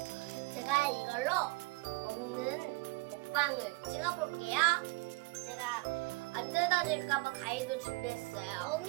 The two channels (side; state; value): left; quieter; 24.9 dB